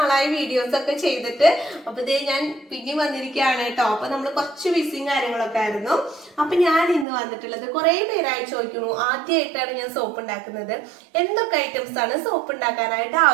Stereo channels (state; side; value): drops out; left; at 7.1 s